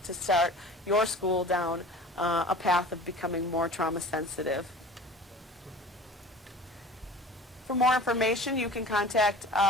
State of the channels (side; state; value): both; normal; correlation 0.40